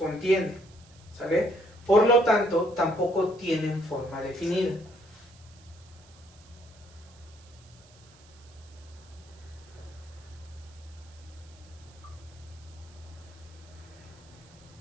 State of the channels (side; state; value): right; noise; hiss, 26 dB below the sound